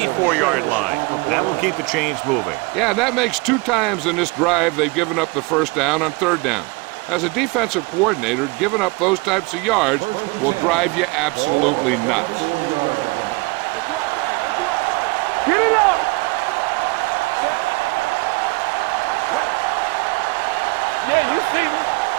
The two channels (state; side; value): quieter; left; 26.3 dB